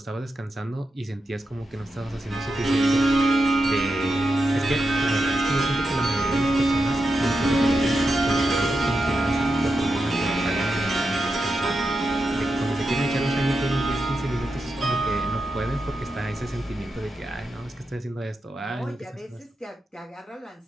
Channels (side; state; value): both; normal; correlation 0.87